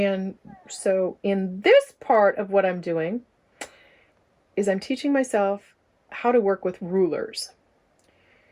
so in this part of what I'm doing is I'm teaching myself how to work with rulers.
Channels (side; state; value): both; identical; correlation 1.00